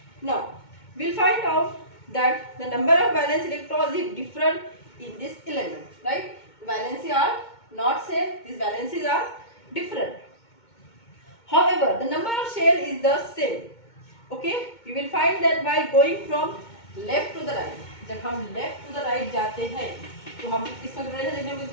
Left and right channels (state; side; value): late; right; 2.2 ms